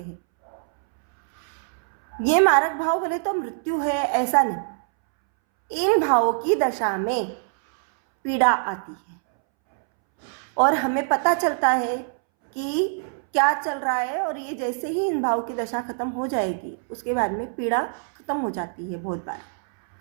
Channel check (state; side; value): silent; left; 63 dB below the other